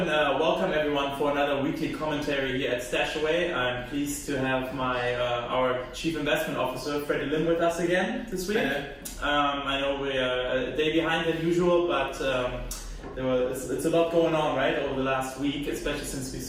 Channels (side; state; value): both; identical; correlation 1.00